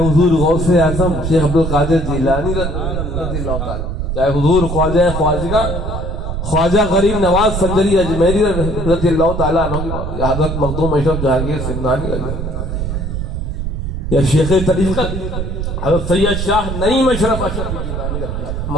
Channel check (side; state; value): right; noise; rumble, 3 dB below the sound